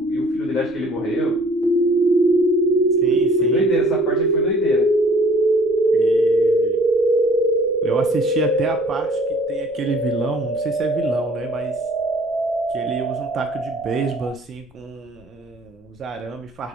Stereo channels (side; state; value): left; noise; rumble, 29 dB below the sound